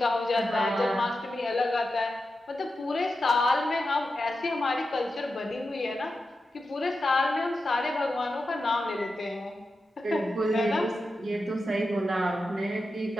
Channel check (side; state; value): both; normal; correlation 0.90